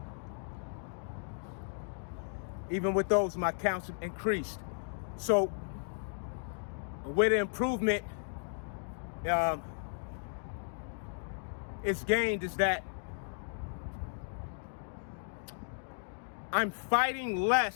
Even with those, my counts increased. So where the improvement is gained is that I'm fighting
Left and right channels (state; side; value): silent; right; digital silence